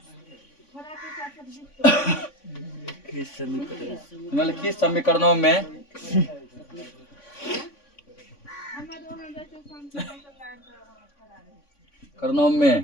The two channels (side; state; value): right; late; 3.5 ms